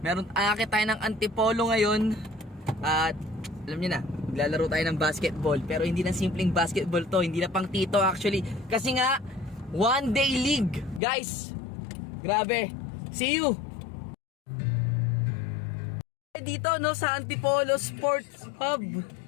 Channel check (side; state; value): right; drops out; at 11.0 s